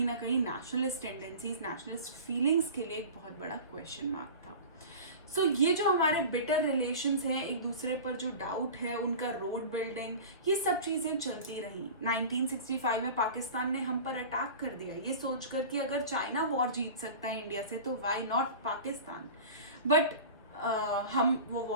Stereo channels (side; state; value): both; inverted; correlation -0.35